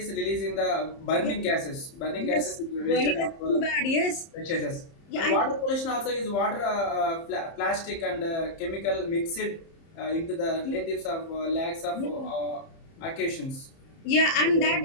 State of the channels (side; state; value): right; late; 30 ms